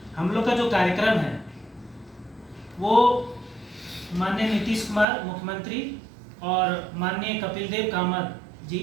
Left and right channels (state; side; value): drops out; left; at 5.1 s